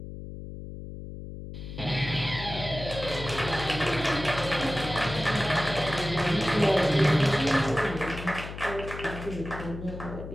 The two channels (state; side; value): noise; left; hum, 10 dB below the sound